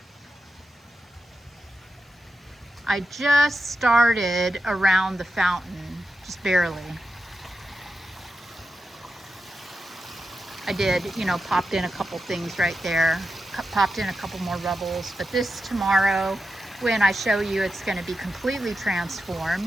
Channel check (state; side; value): normal; both; correlation 0.89